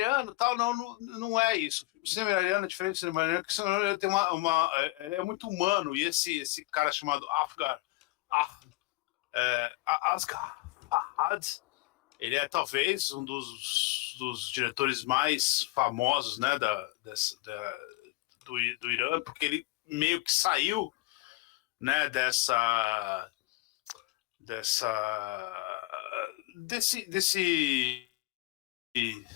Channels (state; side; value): quieter; right; 20.7 dB